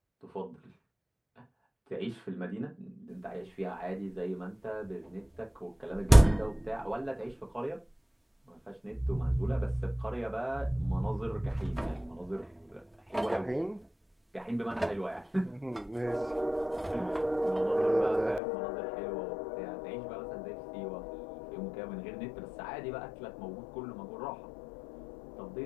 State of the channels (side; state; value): right; drops out; at 18.4 s